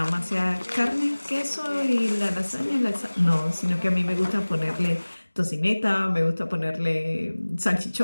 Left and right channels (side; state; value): both; inverted; correlation -1.00